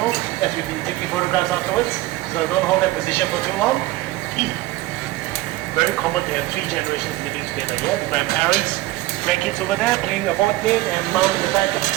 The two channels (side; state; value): left; quieter; 18.0 dB